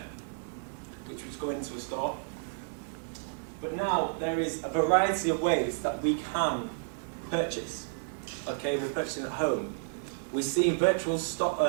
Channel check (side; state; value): left; silent; 57 dB below the other